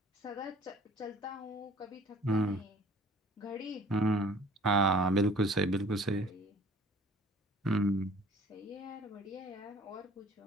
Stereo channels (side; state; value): both; normal; correlation 0.51